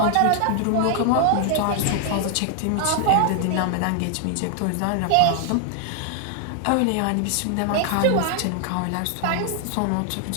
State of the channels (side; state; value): both; different; correlation 0.00